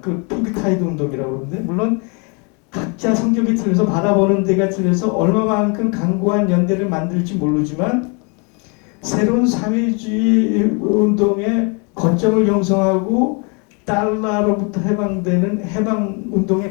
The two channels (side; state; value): right; quieter; 33.9 dB